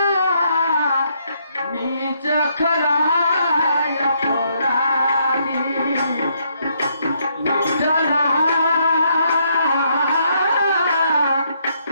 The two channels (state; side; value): inverted; both; correlation -0.73